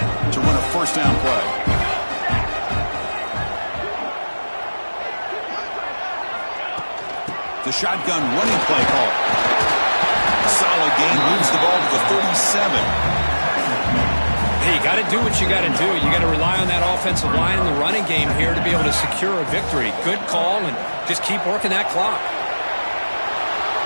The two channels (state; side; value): inverted; both; correlation -1.00